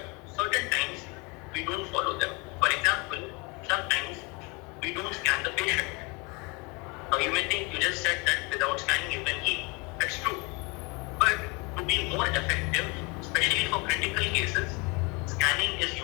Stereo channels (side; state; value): right; quieter; 28.7 dB